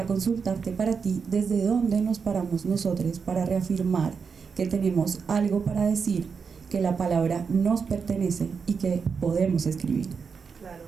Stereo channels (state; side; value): quieter; left; 5.8 dB